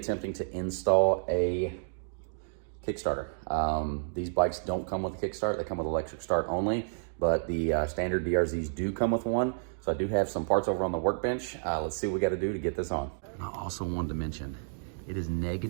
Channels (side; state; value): left; silent; digital silence